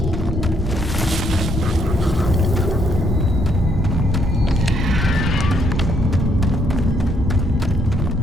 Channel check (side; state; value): both; normal; correlation 0.72